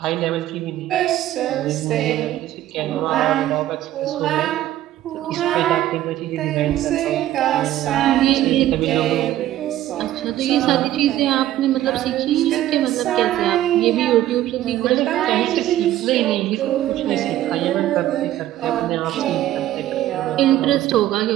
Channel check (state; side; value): quieter; left; 13.5 dB